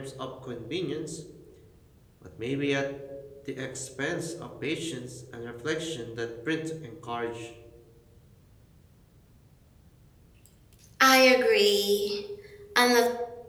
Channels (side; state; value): both; identical; correlation 1.00